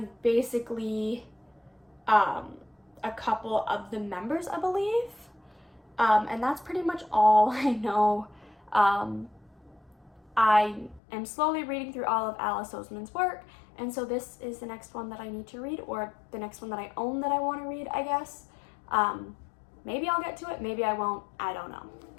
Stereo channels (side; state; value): right; drops out; at 11.0 s